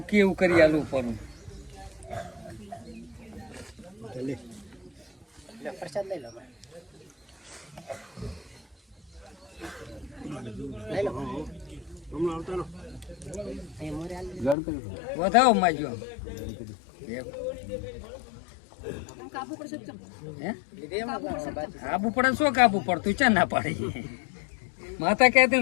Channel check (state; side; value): drops out; right; at 14.6 s